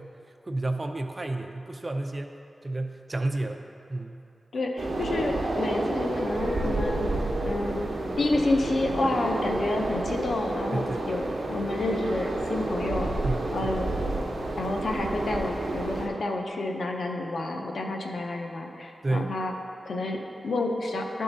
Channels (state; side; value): normal; both; correlation 0.89